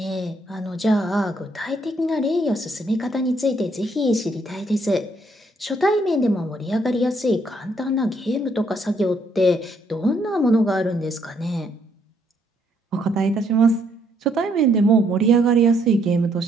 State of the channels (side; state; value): both; normal; correlation 0.70